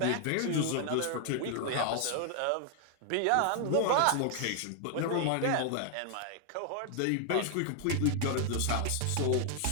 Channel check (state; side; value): different; both; correlation 0.00